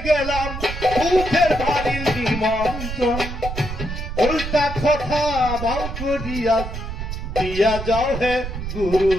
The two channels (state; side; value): noise; right; rumble, 6 dB below the sound